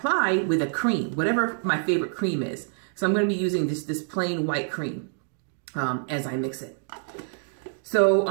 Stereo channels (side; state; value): left; silent; 61 dB below the other